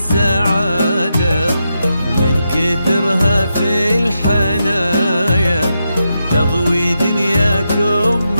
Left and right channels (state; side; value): inverted; both; correlation -0.85